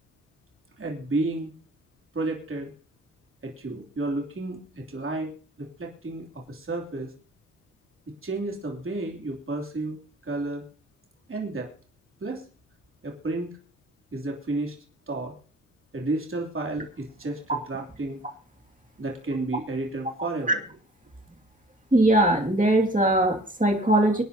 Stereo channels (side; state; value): both; normal; correlation 0.50